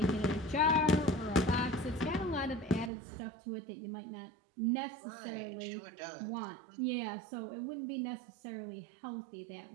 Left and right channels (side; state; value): left; drops out; at 2.9 s